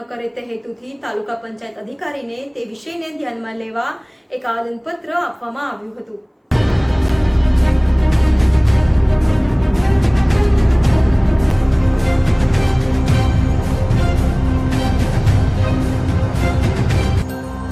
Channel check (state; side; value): identical; both; correlation 1.00